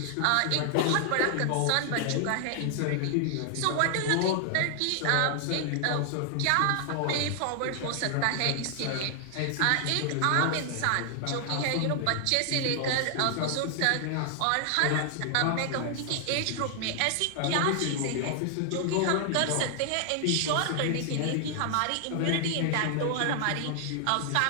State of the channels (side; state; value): both; different; correlation 0.00